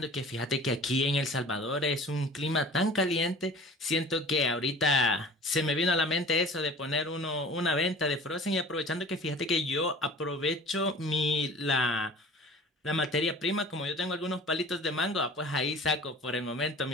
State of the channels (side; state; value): both; normal; correlation 0.43